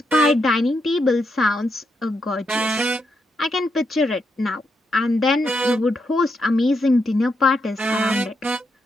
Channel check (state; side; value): normal; both; correlation 0.81